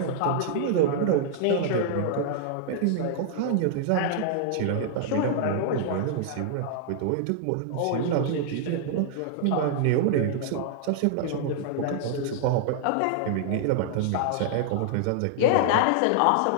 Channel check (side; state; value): both; different; correlation -0.01